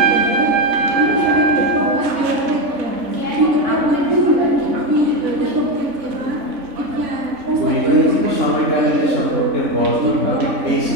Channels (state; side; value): late; left; 3.5 ms